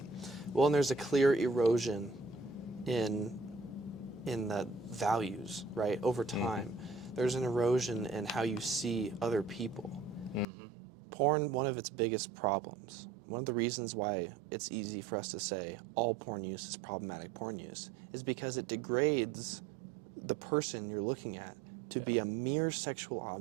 Well, and there's a clear erosion in the values, right? Over time, there's an erosion in how you see other people. Porn, one of its biggest problems, one of the reasons why it's easy for us to say all porn use is problematic porn use, is because it degrades the person you're looking at to be a mere sexual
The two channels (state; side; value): drops out; left; at 10.5 s